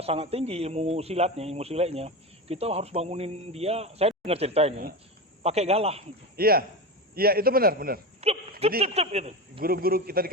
sangat tinggi ilmu silatnya, kita harus bangunin dia. Saya dengar cerita ini pakai galah. Iya. Iya, itu benar. Jadi Gitu. guru-guru kita di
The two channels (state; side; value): normal; both; correlation 0.22